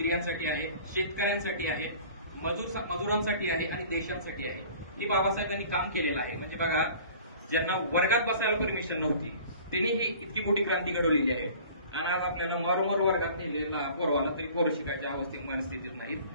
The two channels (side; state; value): both; inverted; correlation -0.47